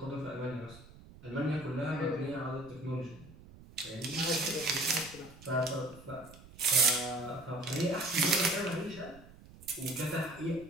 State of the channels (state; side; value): noise; right; rumble, 20 dB below the sound